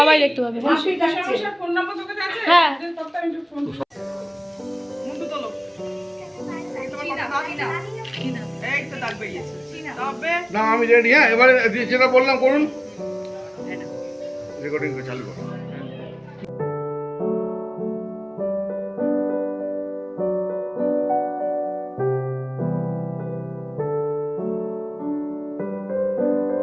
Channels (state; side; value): identical; both; correlation 1.00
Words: দেখতে পাবে। হ্যাঁ না আমি রেডি। হ্যাঁ এবারে যেটা বললাম করুন, রেকর্ডিং চালু করুন।